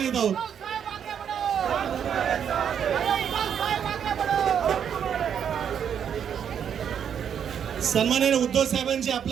आहोत. सन्माननीय उद्धव साहेबांची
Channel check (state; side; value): quieter; left; 8.3 dB